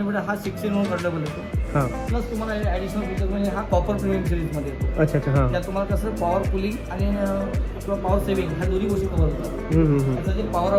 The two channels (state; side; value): identical; both; correlation 1.00